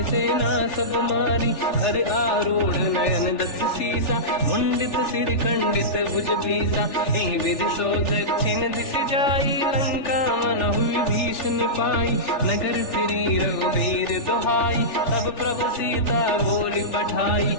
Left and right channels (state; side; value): late; right; 3.4 ms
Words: सेना सब मारी, हर आरूढ़ नयन दस सीसा, मुंडित सिर खंडित भुज भीसा, एहि विधि सो दक्षिण दिश जाई, लंका मन हुई भीषण पाई, नगर फिरी रघुबीर दुहाई, तब प्रभु सीता बोली पठाई,